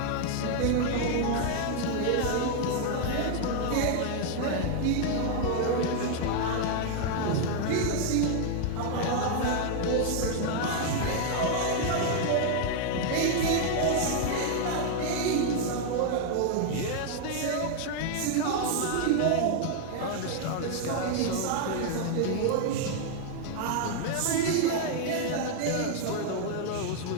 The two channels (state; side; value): different; both; correlation 0.00